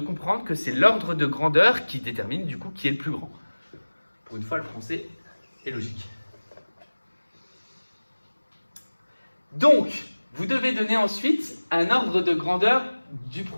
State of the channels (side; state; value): both; inverted; correlation -1.00